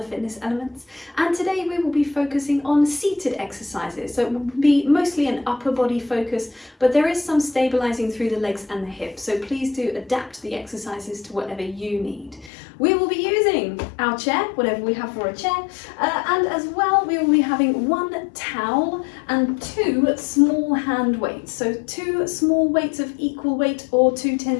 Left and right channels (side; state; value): right; drops out; at 12.5 s